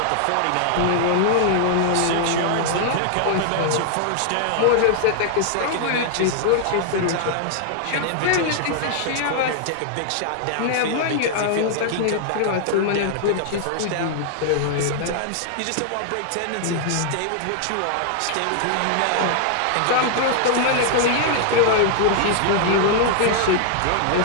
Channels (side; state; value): both; different; correlation -0.01